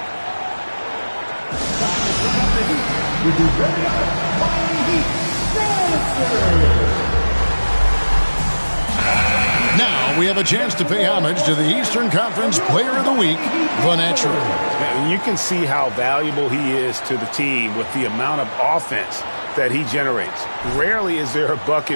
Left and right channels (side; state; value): both; inverted; correlation -1.00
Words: Now we have a chance to pay homage to the Eastern Conference Player of the Week, the Natural. And you can see how valuable he is to the team with the amount of offense that he generates. Rarely is there a